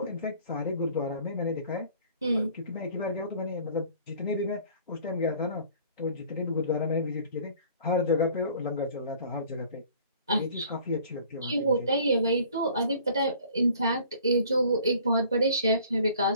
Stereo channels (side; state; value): both; inverted; correlation -0.52